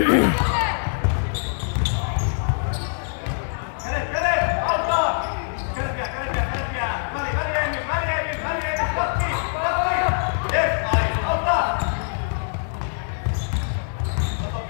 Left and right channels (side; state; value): right; silent; digital silence